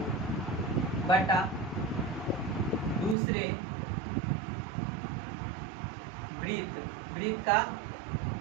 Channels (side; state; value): left; drops out; at 3.2 s